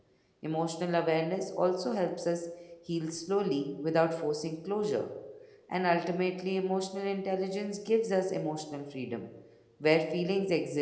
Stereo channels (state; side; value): identical; both; correlation 1.00